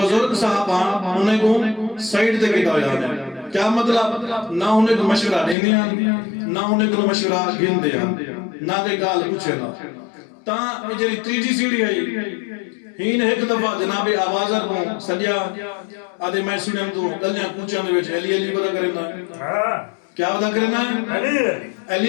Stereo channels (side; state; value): right; drops out; at 5.6 s